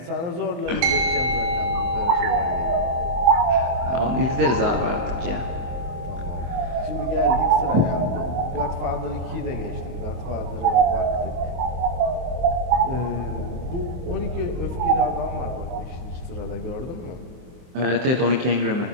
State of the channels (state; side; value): late; left; 24 ms